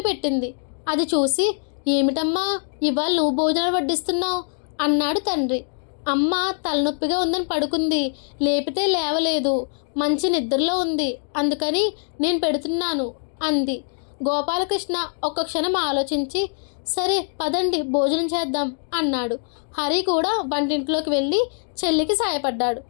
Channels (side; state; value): right; silent; 63 dB below the other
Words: పెట్టింది. అది చూసి, ఏమిటమ్మా ఇవాళ నువ్వు భోజనం వడ్డిస్తున్నావు అన్నాడు తండ్రి. అమ్మ తలనొప్పిగా ఉందని పడుకుంది, లేపితే లేవలేదు, మంచి నిద్రలో ఉంది, అందుకని నేను పెడుతున్నాను అంది. గోపాలకృష్ణ ఒక్క క్షణం ఆలోచించి, సరే పదండి భోజనం చేద్దాం అన్నాడు. హరి కూడా వంటింట్లోకి వెళ్ళి చెల్లికి సాయపడ్డాడు.